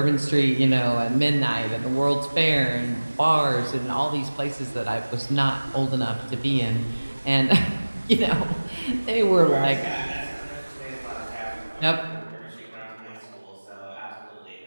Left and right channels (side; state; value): both; inverted; correlation -1.00